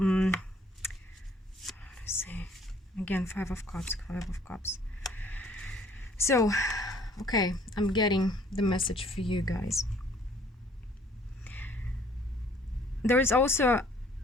see. Again, 5 of Cups. So, okay, I'm getting the message for you guys. There is also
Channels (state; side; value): normal; both; correlation 0.59